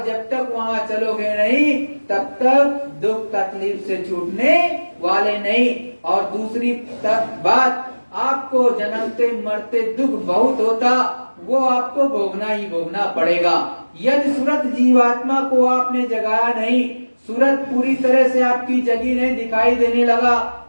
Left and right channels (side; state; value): both; inverted; correlation -1.00